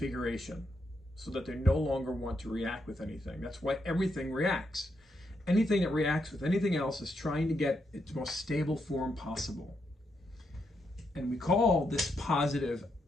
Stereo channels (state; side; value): normal; both; correlation 0.80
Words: so that they no longer want to react with anything. That's why everything reacts. Anything that reacts with anything else is trying to get its most stable form possible. And we call this positive